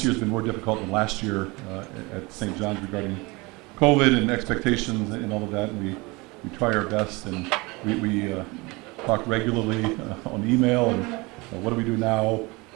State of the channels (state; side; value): quieter; left; 24.8 dB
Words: year's been more difficult than last year at St. John's regarding COVID and expectations and all of that, and we try our best, and we talk regularly on email, and what do we do now?